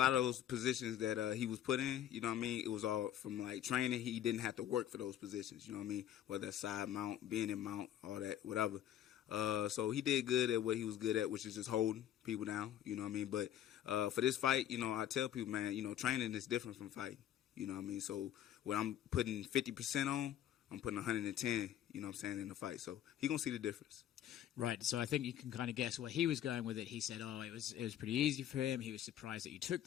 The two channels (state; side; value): quieter; right; 11.1 dB